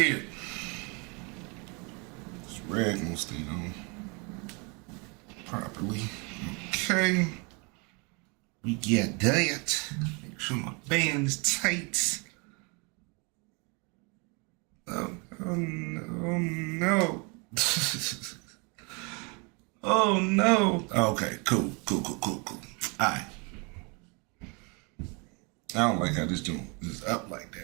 This rag won't stay on properly. Okay. We get that. Make sure my band is tight. Oh no. Oh no. Okay, cool. Alright. I don't like how this joint is up like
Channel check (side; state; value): left; quieter; 31.8 dB